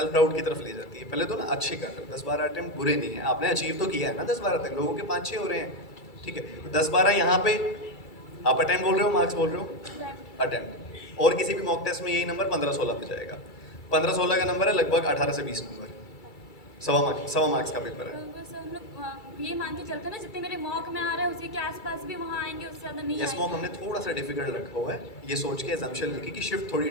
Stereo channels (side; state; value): right; late; 2.3 ms